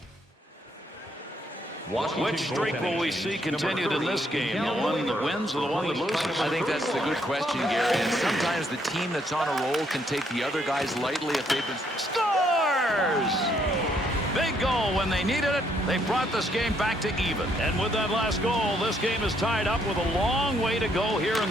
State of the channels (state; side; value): normal; both; correlation 0.71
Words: Which streak will we see continued in this game? The one that wins or the one that loses? I think that's the good question, Gary. And sometimes the team that's on a roll can take the other guys lightly if they've been... Scores! Big goal when they needed it. They brought this game back to even. And with that last goal, this game is tied up with a long way to go here